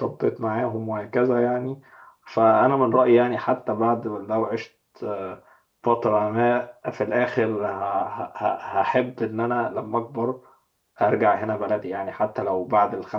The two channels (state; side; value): identical; both; correlation 1.00